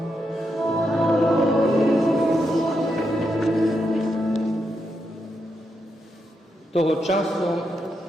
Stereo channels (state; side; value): normal; both; correlation 0.83